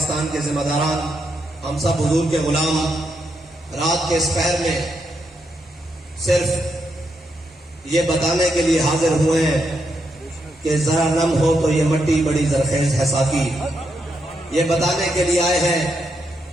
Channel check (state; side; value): normal; both; correlation 0.81